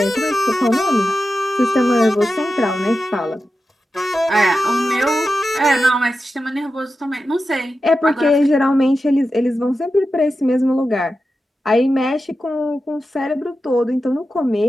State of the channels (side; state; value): both; normal; correlation 0.91